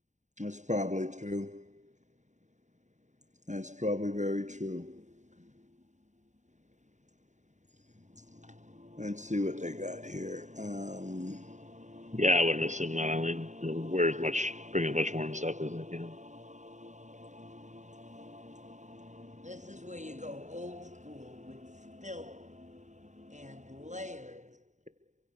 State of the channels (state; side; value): late; left; 0.35 ms